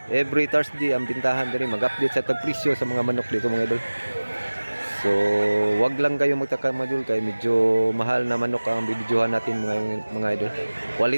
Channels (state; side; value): inverted; both; correlation -1.00